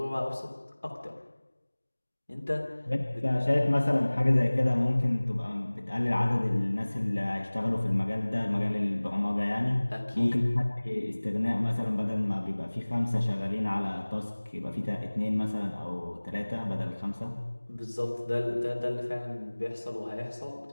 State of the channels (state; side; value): inverted; both; correlation -1.00